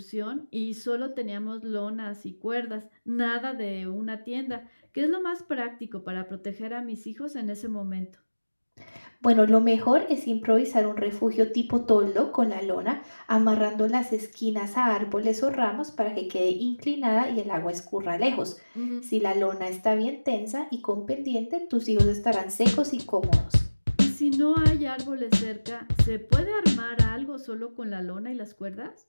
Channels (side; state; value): both; inverted; correlation -1.00